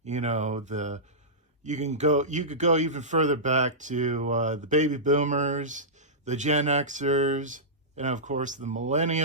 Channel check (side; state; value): both; normal; correlation -0.16